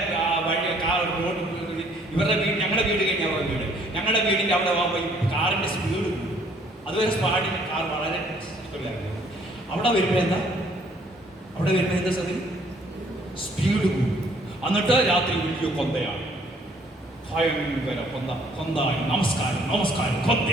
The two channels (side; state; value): both; normal; correlation 0.62